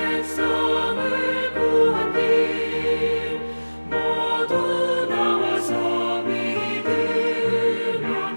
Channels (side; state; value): both; inverted; correlation -1.00